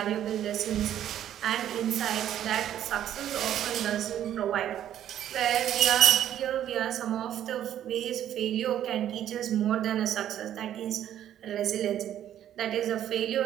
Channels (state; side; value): quieter; left; 11.1 dB